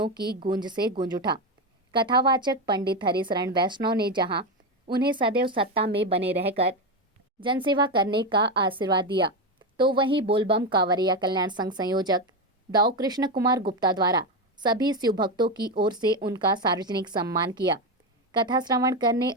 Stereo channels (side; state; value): both; normal; correlation 0.13